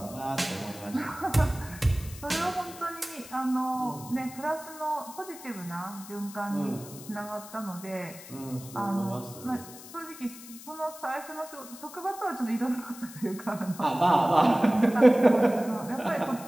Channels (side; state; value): left; noise; hiss, 16 dB below the sound